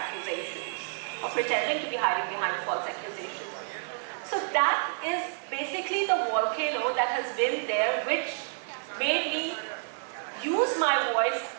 or pretending to be hiding behind false accusations. So that is basically the volcano that has been there, which made me use my voice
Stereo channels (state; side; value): silent; left; digital silence